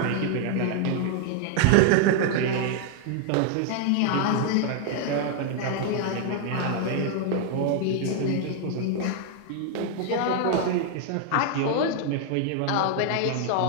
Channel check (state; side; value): different; both; correlation 0.00